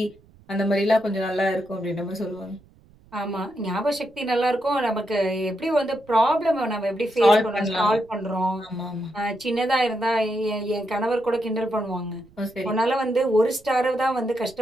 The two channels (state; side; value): noise; right; rumble, 28 dB below the sound